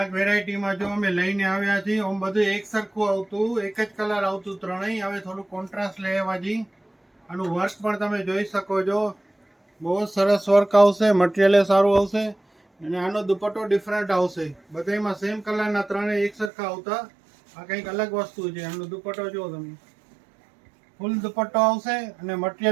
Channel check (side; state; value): left; drops out; at 16.5 s